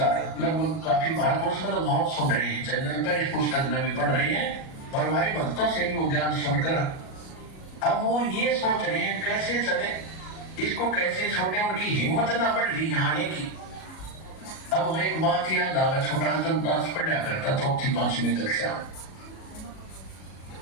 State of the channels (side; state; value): right; late; 37 ms